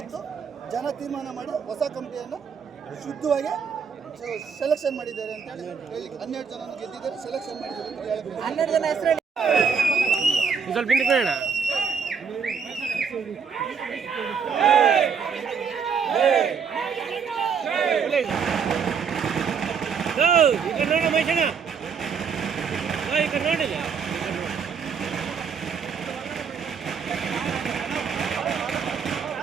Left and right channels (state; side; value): quieter; left; 6.2 dB